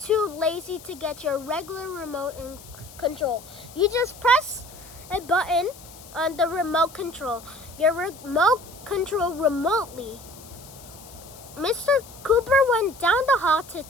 too lazy to get your regular remote control. You just press a button on the remote control. Your remote control remotely. Mr. Cooper went down the hall to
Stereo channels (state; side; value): noise; left; hiss, 19 dB below the sound